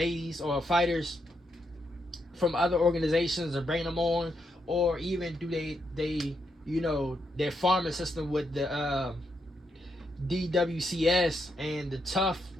or fighters from other organizations and bring them on, or even do they their farming system with the DWCS and the Tough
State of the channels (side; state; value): both; normal; correlation 0.80